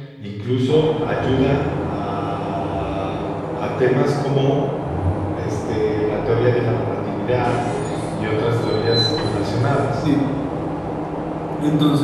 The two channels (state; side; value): identical; both; correlation 1.00